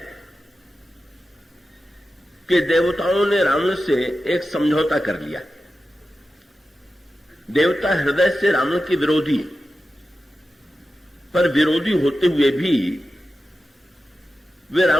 कि देवताओं ने रावण से एक समझौता कर लिया। देवता हृदय से रावण के विरोधी, पर विरोधी होते हुए भी वे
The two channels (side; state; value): both; normal; correlation 0.92